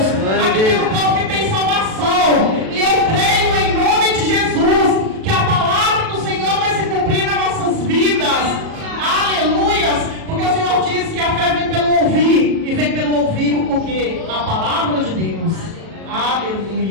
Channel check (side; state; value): left; late; 37 ms